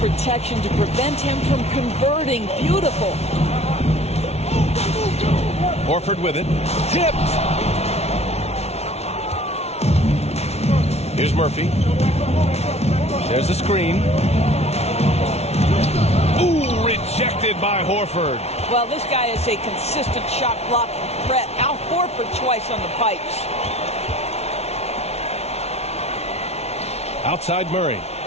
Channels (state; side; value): late; right; 0.31 ms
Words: to prevent him from converting. Beautiful. Horford with it. Tipped. Here's Murphy. There's a screen. Ooh, rejected by Horford. Well, this guy is a consistent shot blocking threat. Now Horford twice on the pipes. Outside Murray.